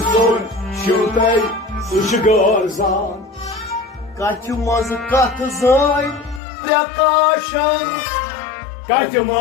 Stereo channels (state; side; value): drops out; right; at 6.4 s